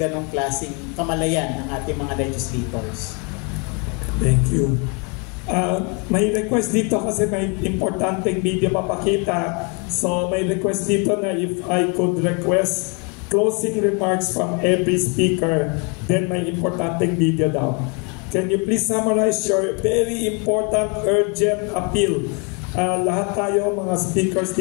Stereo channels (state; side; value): quieter; right; 34.2 dB